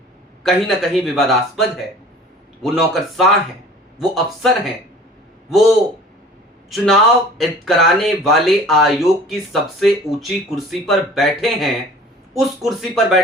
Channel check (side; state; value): both; normal; correlation 0.46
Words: कहीं ना कहीं विवादास्पद है। वो नौकरशाह हैं, वो अफसर हैं, वो चुनाव कराने वाले आयोग की सबसे ऊंची कुर्सी पर बैठे हैं, उस कुर्सी पर